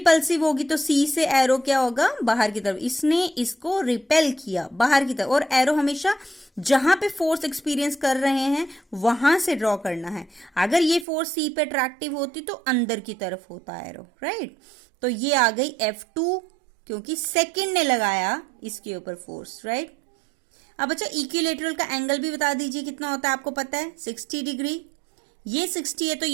होगी. तो सी से एरो क्या होगा? बाहर की तरफ. इसने इसको रिपेल किया बाहर की तरफ. और एरो हमेशा जहां पे फोर्स एक्सपीरियंस कर रहे हैं वहां से ड्रॉ करना है. अगर ये फोर्स सी पे अट्रैक्टिव होती तो अंदर की तरफ होता एरो, राइट? तो ये आ गई F2 क्योंकि सेकंड ने लगाया इसके ऊपर फोर्स, राइट? अब अच्छा, इक्विलेटरल का एंगल भी बता दीजिए कितना होता है, आपको पता है 60 डिग्री. ये 60 है तो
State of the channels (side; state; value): left; drops out; at 11.1 s